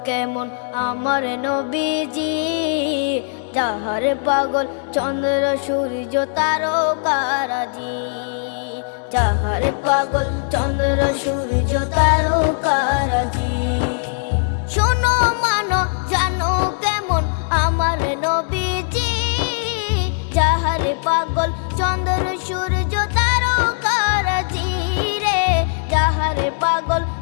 কেমন আমার নবীজি, যাহার পাগল চন্দ্র সূর্য তারকারাজি, যাহার পাগল চন্দ্র সূর্য তারকারাজি। শোনো মানো জানো কেমন আমার নবীজি, যাহার পাগল চন্দ্র সূর্য তারকারাজি রে, যাহার পাগল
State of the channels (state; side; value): silent; right; 66 dB below the other